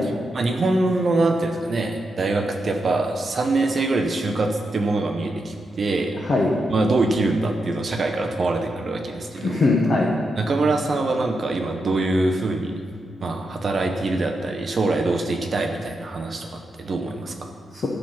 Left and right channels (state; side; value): normal; both; correlation 0.85